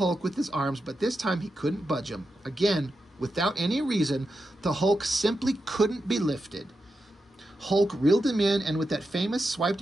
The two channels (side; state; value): both; normal; correlation 0.88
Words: with his arms, but this time he couldn't budge him. Again, without any reason, the Hulk simply couldn't be lifted. Hulk reeled him in, and with that famous